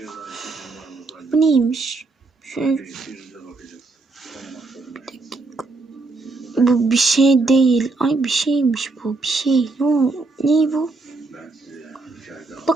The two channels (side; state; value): left; quieter; 3.7 dB